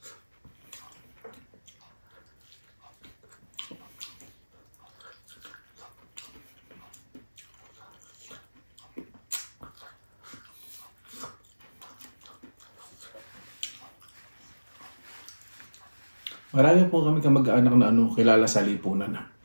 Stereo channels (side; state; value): both; inverted; correlation -1.00